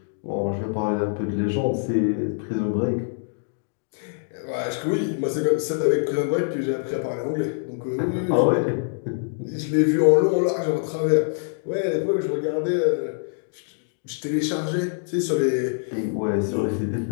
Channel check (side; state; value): right; silent; digital silence